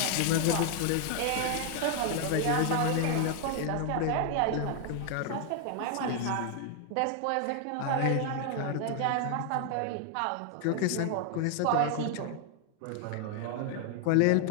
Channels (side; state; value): both; different; correlation 0.00